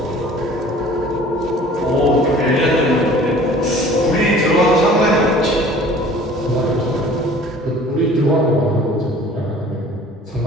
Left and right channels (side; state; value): both; normal; correlation 0.48